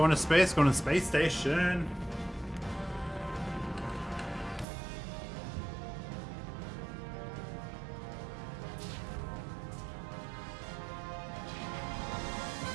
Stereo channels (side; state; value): left; drops out; at 4.7 s